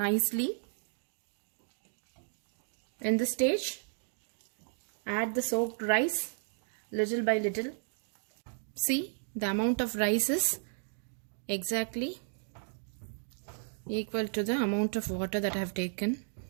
In this stage, add the soaked rice little by little. See, the amount of rice is exactly equal to the amount of water that I have taken.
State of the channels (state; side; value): silent; left; 55 dB below the other